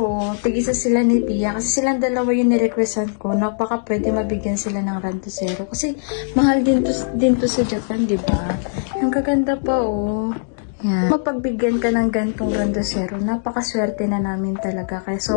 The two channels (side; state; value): right; silent; digital silence